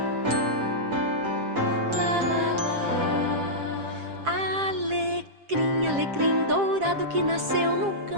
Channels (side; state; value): left; late; 7.5 ms